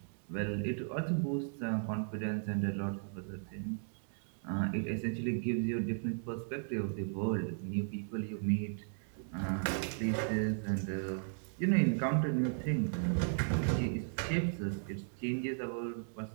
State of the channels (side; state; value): left; silent; digital silence